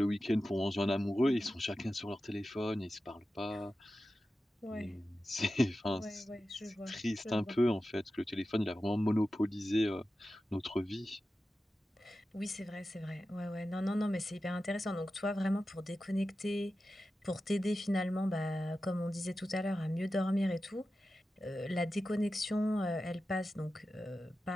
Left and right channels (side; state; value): both; normal; correlation 0.93